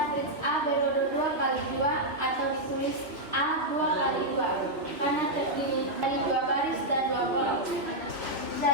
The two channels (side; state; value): left; late; 3.2 ms